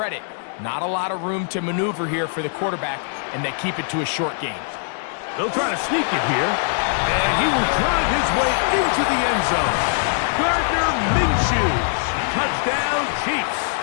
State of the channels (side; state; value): right; silent; digital silence